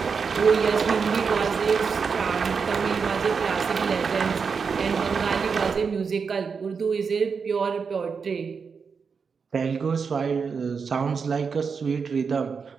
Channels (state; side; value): quieter; left; 5.6 dB